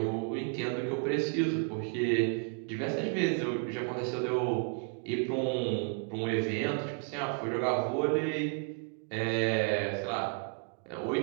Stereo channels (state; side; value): quieter; left; 39.5 dB